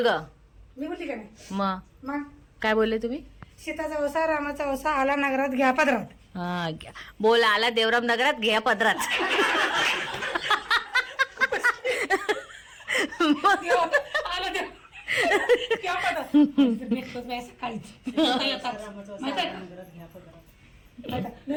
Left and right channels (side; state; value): both; identical; correlation 1.00